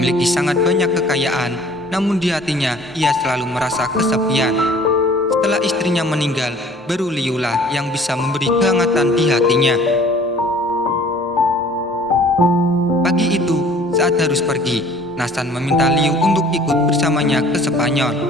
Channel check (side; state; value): both; normal; correlation 0.52